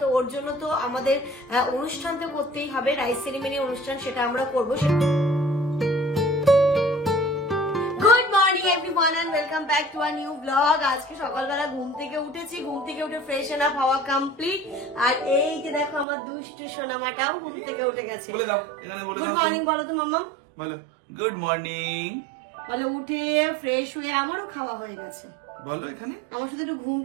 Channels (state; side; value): drops out; left; at 16.1 s